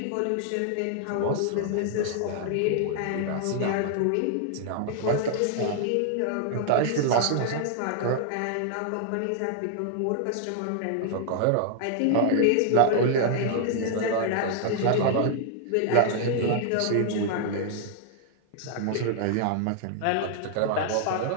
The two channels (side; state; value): both; different; correlation -0.01